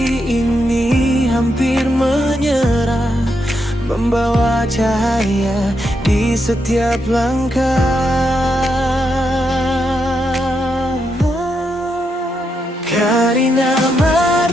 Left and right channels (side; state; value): both; normal; correlation 0.82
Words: ini hampir menyerah, membawa cahaya di setiap langkah. Karina